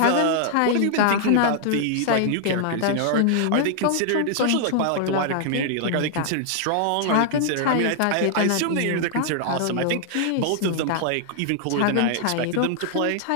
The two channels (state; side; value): different; both; correlation -0.01